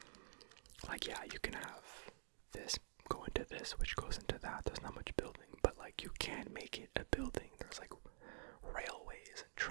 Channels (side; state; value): left; silent; digital silence